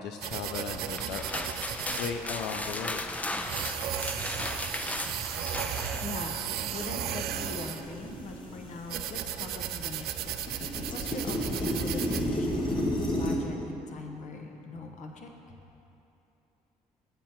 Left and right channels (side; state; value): both; normal; correlation 0.47